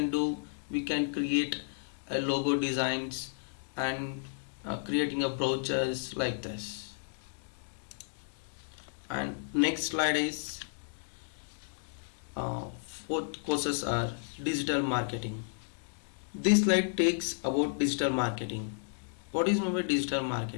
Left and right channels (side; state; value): right; silent; digital silence